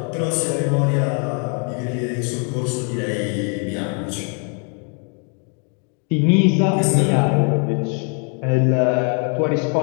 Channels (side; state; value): right; quieter; 39.7 dB